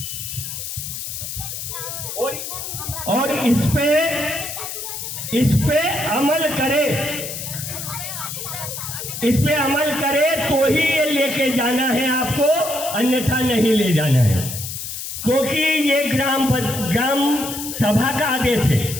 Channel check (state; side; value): noise; left; hiss, 7 dB below the sound